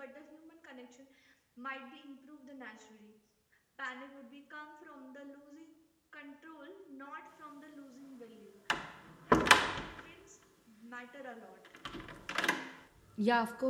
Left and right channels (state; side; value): identical; both; correlation 1.00